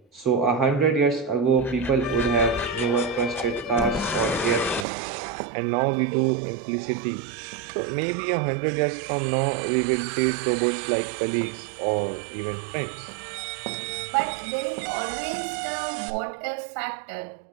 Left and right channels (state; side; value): drops out; left; at 4.9 s